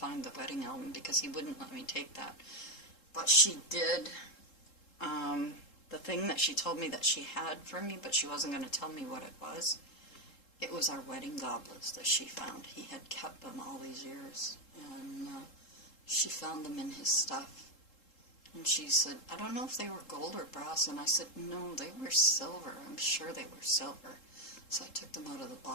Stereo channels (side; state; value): right; late; 3.7 ms